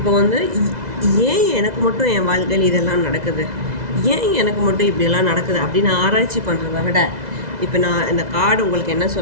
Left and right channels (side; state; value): left; late; 2.0 ms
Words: வந்து ஏன் எனக்கு மட்டும் என் வாழ்க்கையில் இதெல்லாம் நடக்குது, ஏன் எனக்கு மட்டும் இப்படியெல்லாம் நடக்குது அப்படின்னு ஆராய்ச்சி பண்ணுறத விட, இப்போ நான் இந்த கார்டு உங்களுக்கு என்ன